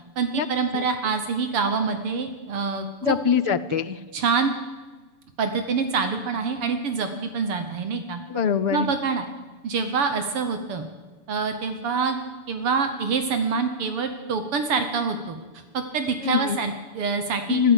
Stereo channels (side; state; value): left; late; 7.0 ms